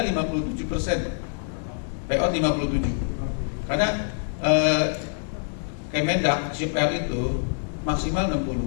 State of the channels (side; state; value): right; silent; digital silence